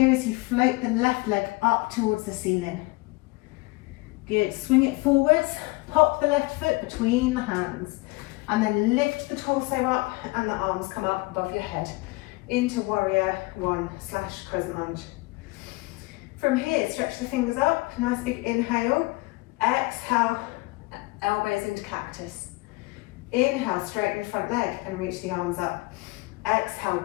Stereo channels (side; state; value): right; quieter; 23.8 dB